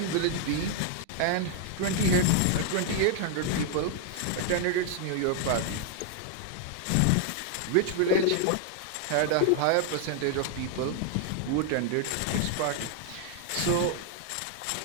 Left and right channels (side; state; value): both; different; correlation 0.00